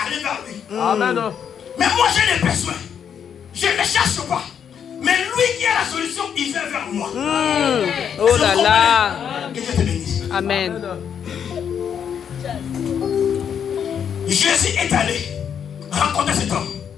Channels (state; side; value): quieter; right; 8.0 dB